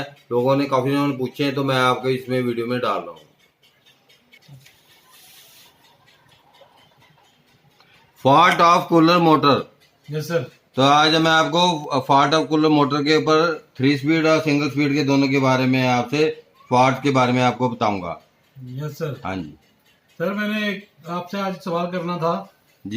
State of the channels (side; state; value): both; identical; correlation 1.00